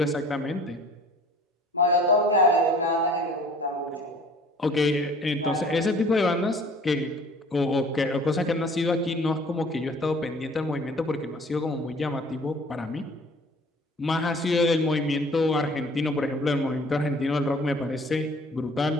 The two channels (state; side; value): normal; both; correlation 0.51